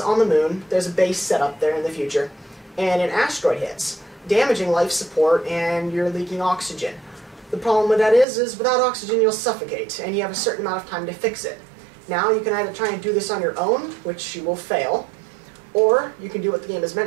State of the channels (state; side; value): drops out; left; at 8.2 s